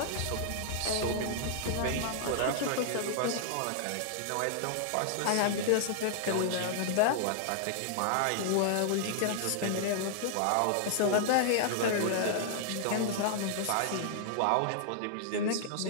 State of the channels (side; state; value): both; different; correlation -0.01